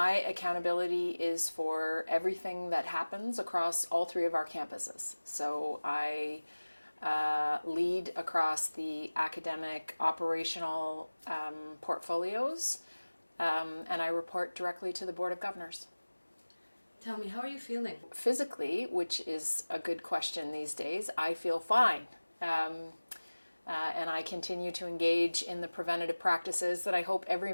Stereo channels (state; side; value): inverted; both; correlation -1.00